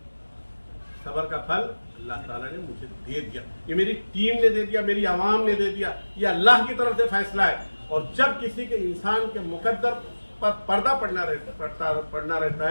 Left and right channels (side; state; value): both; inverted; correlation -1.00